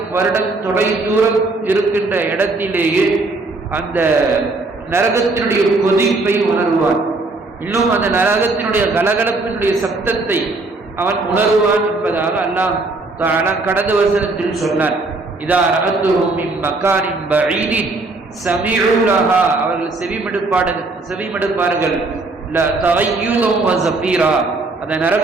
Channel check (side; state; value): left; quieter; 3.3 dB